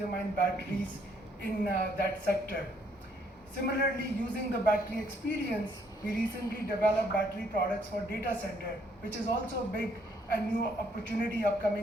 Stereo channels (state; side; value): normal; both; correlation 0.68